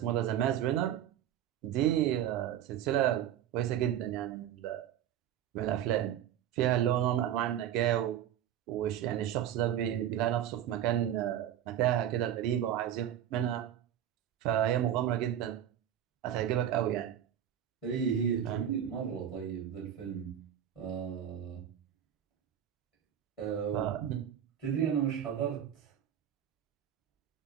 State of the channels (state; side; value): quieter; left; 10.6 dB